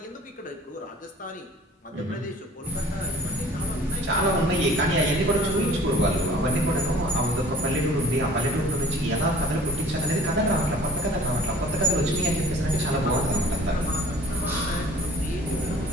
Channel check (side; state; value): both; normal; correlation 0.48